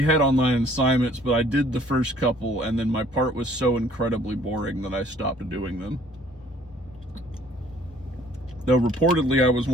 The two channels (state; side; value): normal; both; correlation 0.58